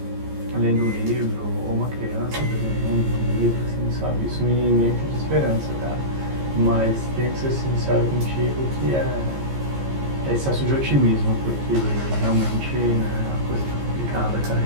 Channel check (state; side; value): late; left; 15 ms